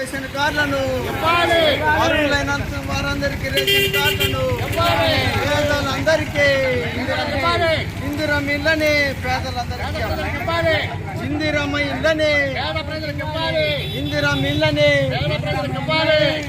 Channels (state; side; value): identical; both; correlation 1.00